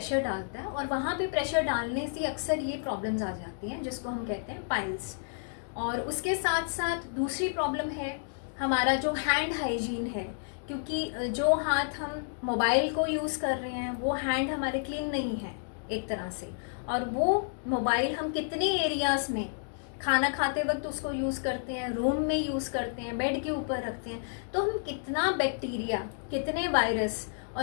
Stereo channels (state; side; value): silent; right; digital silence